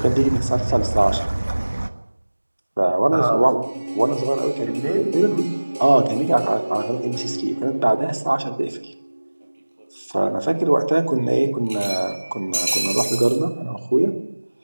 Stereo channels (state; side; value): inverted; both; correlation -1.00